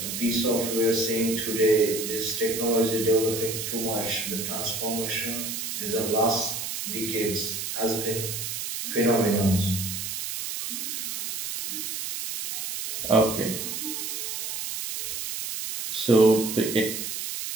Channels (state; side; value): noise; right; hiss, 4 dB below the sound